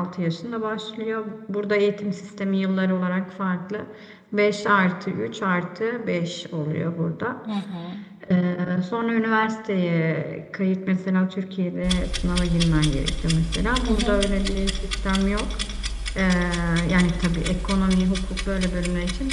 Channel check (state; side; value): identical; both; correlation 1.00